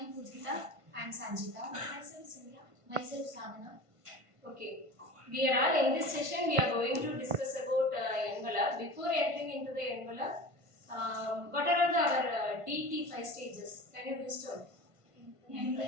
am Pujita. I am Sanjita. Myself Simya. Myself Sadhana. Okay, we are all in this session. We are going to discuss about envelope. Before entering into the envelope, what are our DT5 stages? Can you please tell?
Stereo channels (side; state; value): left; late; 1.5 ms